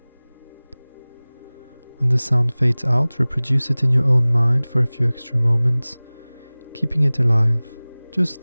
When the sound fades out, reproduce it in your own mind for a few extra moments, keeping it alive, just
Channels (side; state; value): both; inverted; correlation -1.00